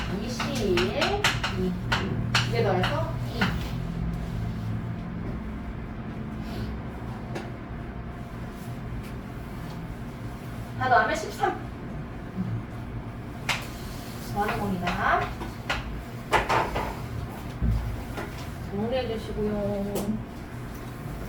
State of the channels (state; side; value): identical; both; correlation 1.00